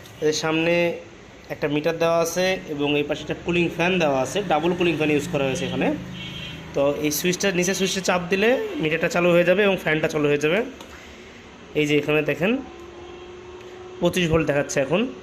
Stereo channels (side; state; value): both; identical; correlation 1.00